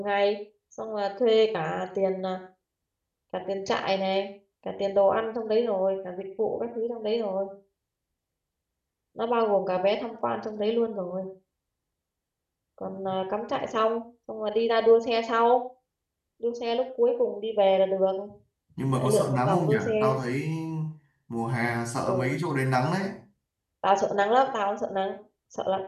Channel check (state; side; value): identical; both; correlation 1.00